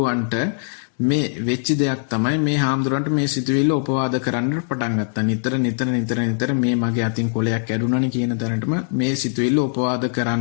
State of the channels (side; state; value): right; silent; 65 dB below the other